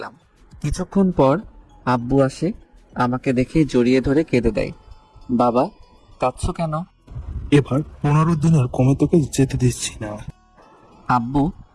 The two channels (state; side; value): identical; both; correlation 1.00